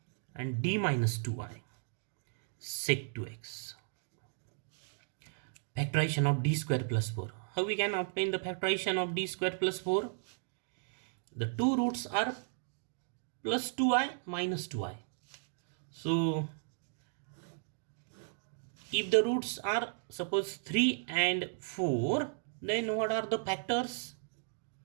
and D minus 2i sec 2x. Factorization of D square plus 4. How we can obtain the factorization of D square plus 4? The two roots are plus 2i minus 2i. So if the roots are suppose 3 and 4, then what are the factors?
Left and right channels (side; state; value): left; silent; digital silence